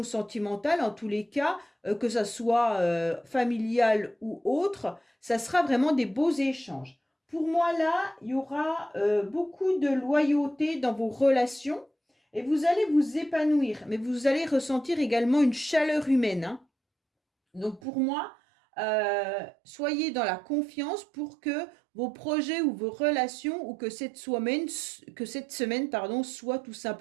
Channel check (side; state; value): left; drops out; at 17.8 s